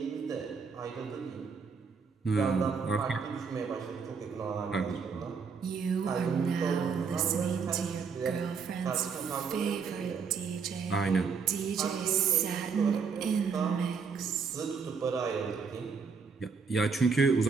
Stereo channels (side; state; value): left; quieter; 5.5 dB